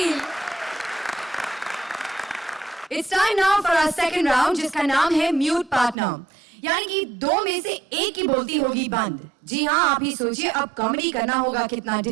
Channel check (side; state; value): left; drops out; at 6.0 s